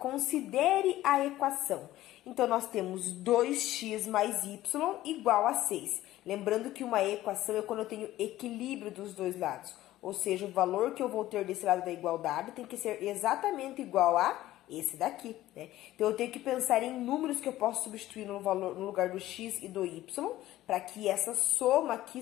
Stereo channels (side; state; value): right; quieter; 15.0 dB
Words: a equação. Então, nós temos 2x mais y igual a 6. Lembrando que uma equação é quando eu tenho equilíbrio dos dois lados. Ou seja, o valor que eu vou ter desse lado da igualdade tem que ser exatamente igual a esse daqui, né? Então, eu tenho que pensar em números que eu posso substituir no lugar do x e do y, para que essa soma aqui